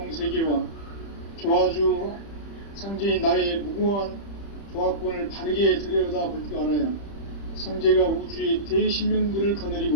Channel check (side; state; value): right; late; 30 ms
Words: 세계와 조화주 상제인 나의 무궁한 조화권을 바르게 들여다볼 줄 알아야 상제가 우주의 대신명들을